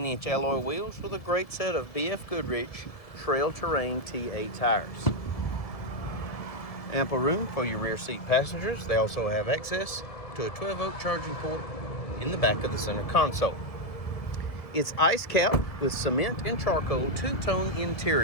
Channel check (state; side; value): late; right; 1.7 ms